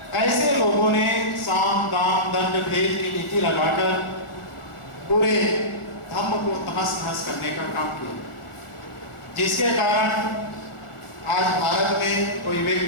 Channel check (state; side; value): late; right; 1.4 ms